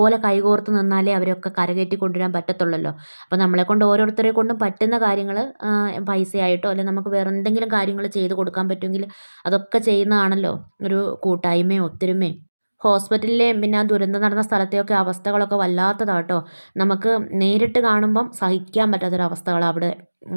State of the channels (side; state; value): both; inverted; correlation -1.00